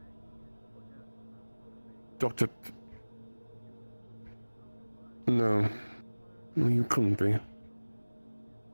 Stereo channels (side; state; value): both; inverted; correlation -1.00